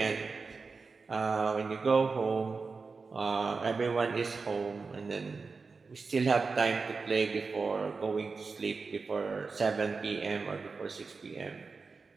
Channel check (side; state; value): left; quieter; 4.5 dB